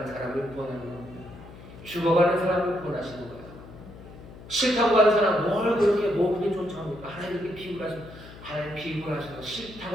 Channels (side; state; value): left; noise; hum, 17 dB below the sound